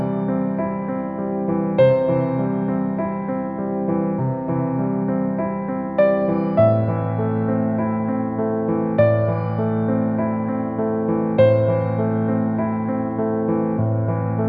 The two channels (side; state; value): both; identical; correlation 1.00